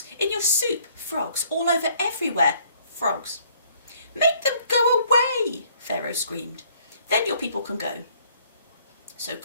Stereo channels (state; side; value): inverted; both; correlation -0.63